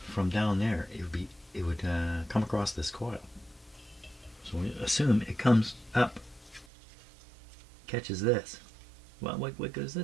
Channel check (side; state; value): left; drops out; at 6.7 s